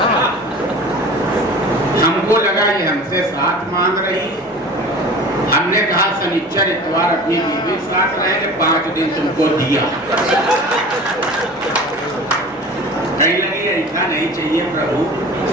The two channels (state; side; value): normal; both; correlation 0.39